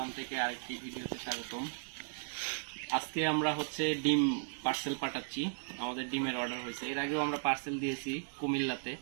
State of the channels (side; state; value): left; silent; digital silence